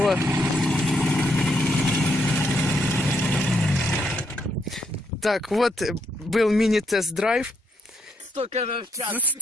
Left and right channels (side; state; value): both; normal; correlation 0.77